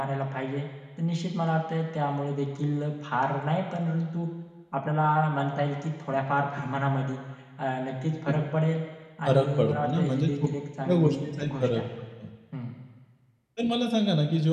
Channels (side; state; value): both; identical; correlation 1.00